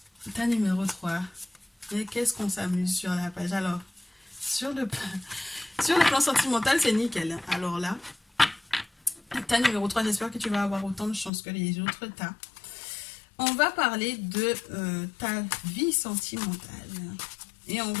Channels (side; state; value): right; drops out; at 11.3 s